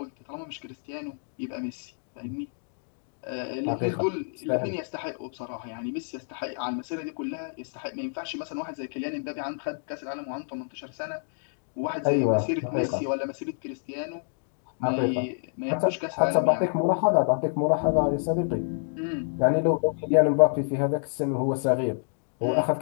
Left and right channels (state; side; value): silent; right; digital silence